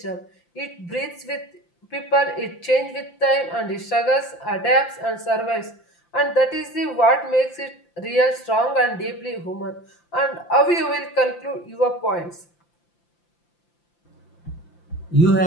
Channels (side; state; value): right; late; 5.8 ms